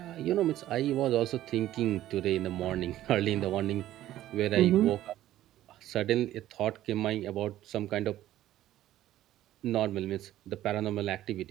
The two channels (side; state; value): left; quieter; 13.7 dB